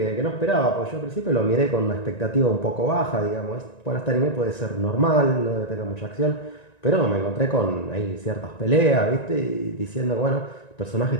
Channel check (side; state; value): right; late; 1.9 ms